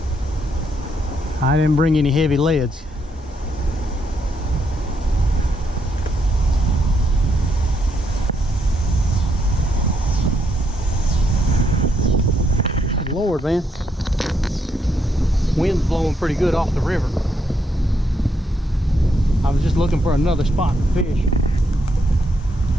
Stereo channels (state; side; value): normal; both; correlation 0.76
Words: I didn't bring any heavy leads. Lord, man. Wind's blowing pretty good off the river. I was just looking for another spot to fish.